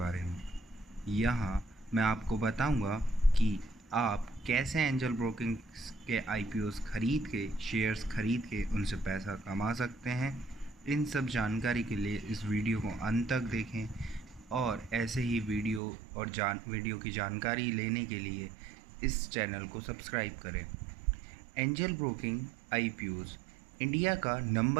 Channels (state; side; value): drops out; left; at 15.8 s